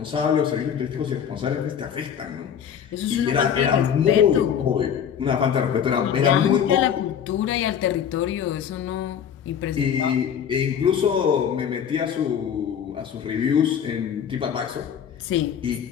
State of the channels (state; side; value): quieter; right; 8.4 dB